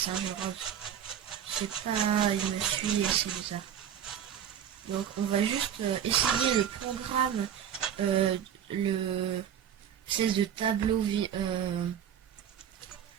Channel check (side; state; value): left; quieter; 9.2 dB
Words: rose. Je sais pas, il me suit et c'est bizarre. Donc, on va juste essayer le programme, le espèce de tableau